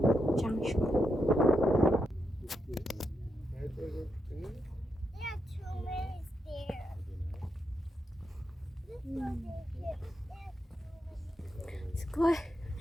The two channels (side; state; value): both; normal; correlation 0.84